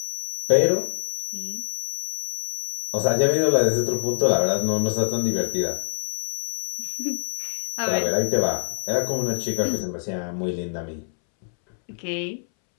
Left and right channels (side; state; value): right; silent; 62 dB below the other